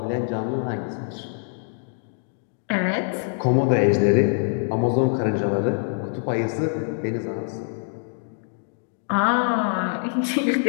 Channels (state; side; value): silent; right; 62 dB below the other